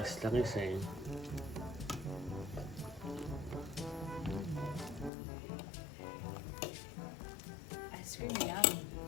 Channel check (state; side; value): drops out; right; at 5.1 s